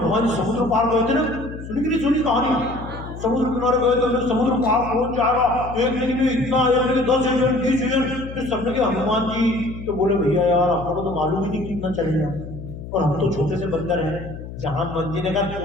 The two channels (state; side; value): noise; left; hum, 11 dB below the sound